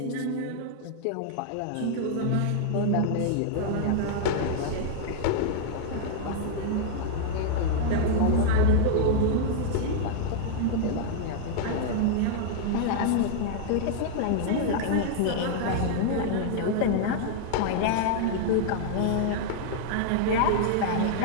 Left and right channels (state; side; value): different; both; correlation -0.01